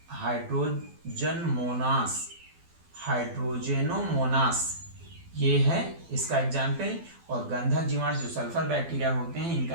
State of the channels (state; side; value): late; left; 12 ms